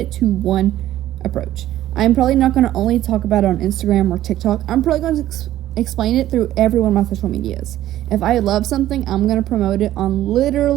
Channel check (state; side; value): quieter; left; 13.5 dB